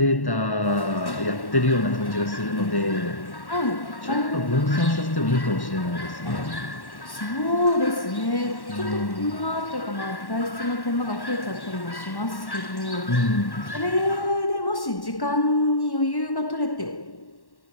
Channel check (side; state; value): right; late; 1.1 ms